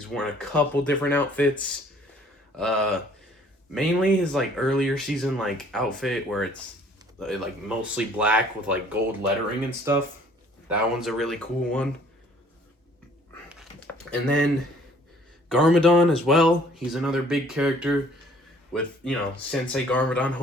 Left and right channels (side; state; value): both; normal; correlation 0.57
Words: worn a couple different outfits. Mainly his like earlier season like outfit where it's like mostly black with like gold lettering and stuff. That one's a really cool one. And then Garmadon as well. He's another big character with, Sensei Garmadon